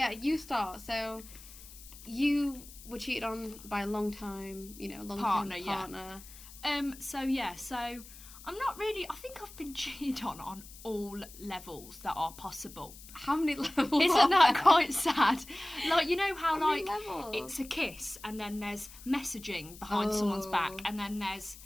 start. So you were cheated on by a long-time partner. So I'm not really. I think I've been cheated on all levels that are possible. How many levels? Isn't that quite sad? Like, you know how many levels? It's a kiss, and then there's messaging behind someone's back, and then there's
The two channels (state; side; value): noise; left; hiss, 17 dB below the sound